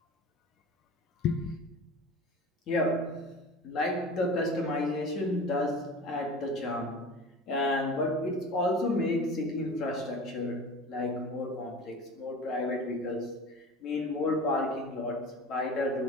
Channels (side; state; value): both; normal; correlation 0.36